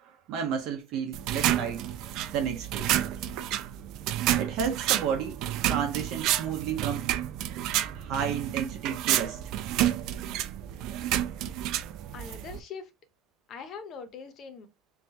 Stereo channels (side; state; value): left; quieter; 10.1 dB